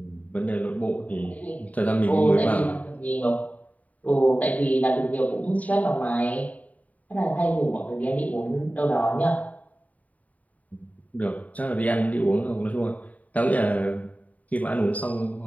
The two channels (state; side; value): late; right; 0.071 ms